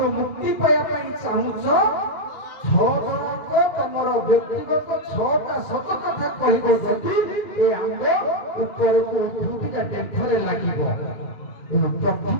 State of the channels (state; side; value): late; right; 2.3 ms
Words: ମୁକ୍ତି ପାଇବା ପାଇଁ ଚାହୁଁଛ, 6 ଜଣଙ୍କ ତମର ବ୍ୟକ୍ତିଗତ 6ଟା ସତ କଥା କହିବ। ଯଦି ଏ ଆମ୍ବ ଉପରକୁ ଉଠୁଥିବା ଡେମ୍ଫରେ ଲାଗିବ।